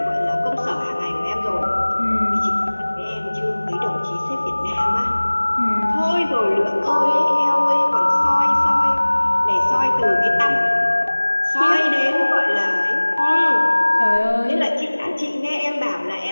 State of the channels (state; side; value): inverted; both; correlation -1.00